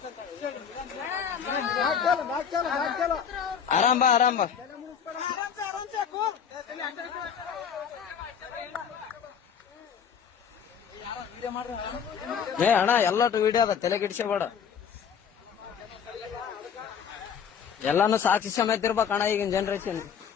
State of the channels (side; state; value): right; quieter; 7.5 dB